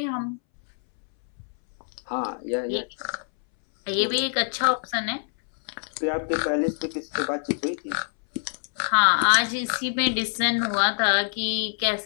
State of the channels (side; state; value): right; silent; 61 dB below the other